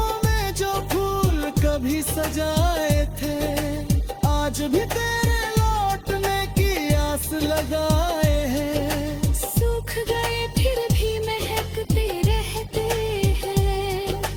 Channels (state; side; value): identical; both; correlation 1.00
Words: में जो फूल कभी सजाए थे, आज भी तेरे लौटने की आस लगाए हैं। सूख गए फिर भी महकते रहते हैं,